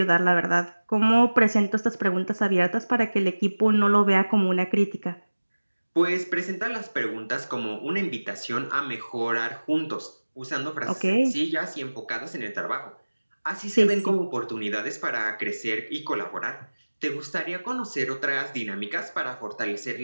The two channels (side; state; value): both; inverted; correlation -1.00